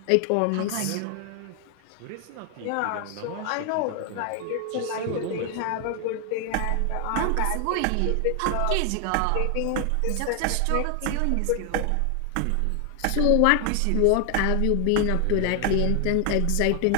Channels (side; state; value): both; different; correlation 0.00